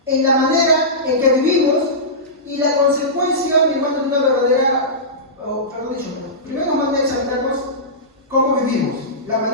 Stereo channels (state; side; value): normal; both; correlation -0.17